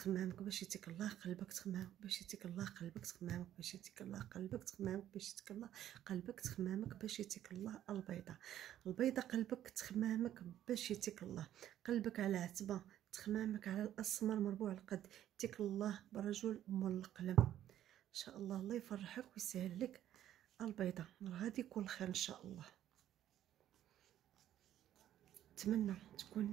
باش يتيك الله. قلبك تخمامك باش يتيك الله. قلبك تخمامك باش يتيك الله. قلبك تخمامك باش يتيك الله. قلبك تخمامك باش يتيك الله. البيضة البيضة قلبك تخمامك باش يتيك الله. قلبك على عتبة، تخمامك على الاسمر مربوع القد، يتيك الله برجل مول القلم ان شاء الله. الله يفرحك ويسهل لك البيضة، غادي يكون خير ان شاء الله. نتمنى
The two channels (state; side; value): quieter; left; 11.8 dB